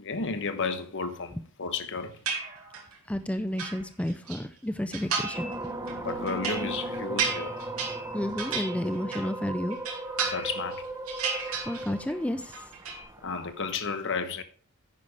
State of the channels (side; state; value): both; normal; correlation 0.39